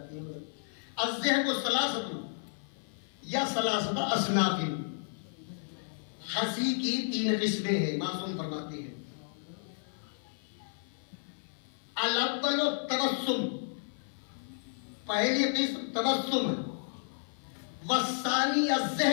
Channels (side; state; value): right; silent; 56 dB below the other